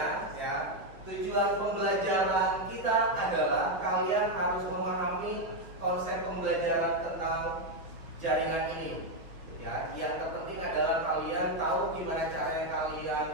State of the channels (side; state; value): left; late; 5.5 ms